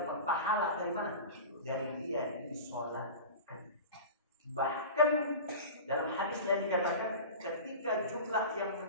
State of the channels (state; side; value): inverted; both; correlation -0.33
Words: pahala dari mana? Dari dia disolatkan. Bahkan dalam hadis yang dikatakan, ketika jumlah yang